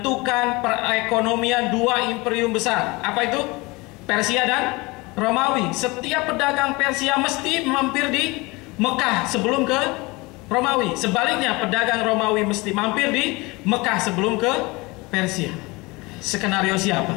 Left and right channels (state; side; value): quieter; right; 24.1 dB